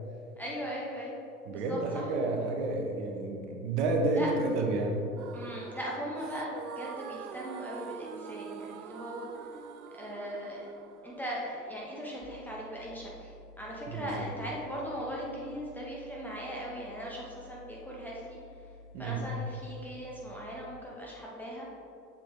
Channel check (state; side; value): normal; both; correlation 0.35